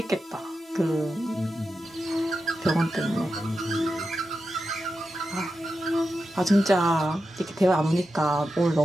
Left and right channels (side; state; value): both; normal; correlation 0.89